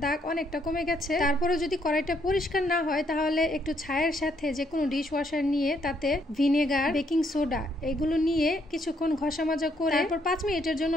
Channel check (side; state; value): both; normal; correlation 0.72